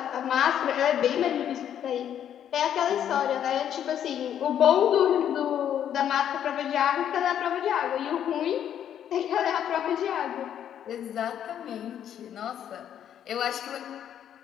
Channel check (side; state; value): right; quieter; 9.8 dB